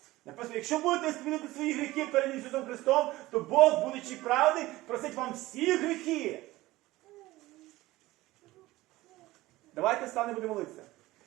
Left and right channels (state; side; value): quieter; left; 18.1 dB